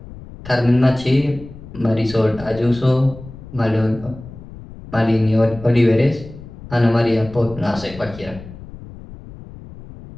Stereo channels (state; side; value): noise; left; rumble, 16 dB below the sound